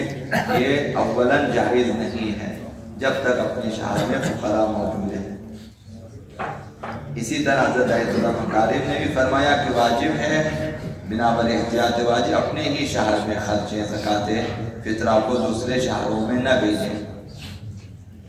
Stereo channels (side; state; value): both; identical; correlation 1.00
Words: یہ اولاً جائز نہیں ہے جب تک اپنے شہر میں فقراء موجود ہیں۔ اسی طرح حضرت آیت اللہ مکارم نے بھی فرمایا کہ واجب ہے بنابر احتیاط واجب اپنے ہی شہر میں خرچیں زکوٰۃ فطرہ کو دوسرے شہروں میں نہ بھیجیں۔